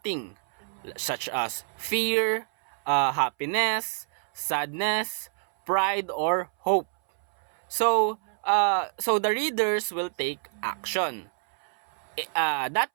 such as fear, happiness, sadness, pride, or hope. So the readers will take action. That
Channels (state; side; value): silent; left; 60 dB below the other